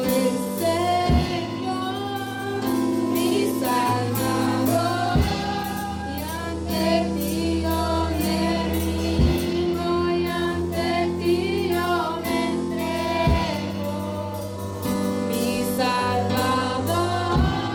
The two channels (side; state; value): both; identical; correlation 1.00